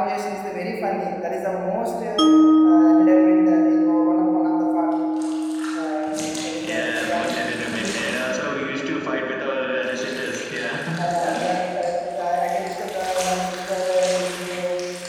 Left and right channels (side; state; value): both; identical; correlation 1.00